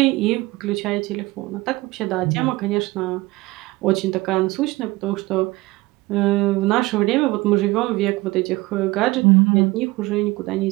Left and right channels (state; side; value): quieter; left; 20.7 dB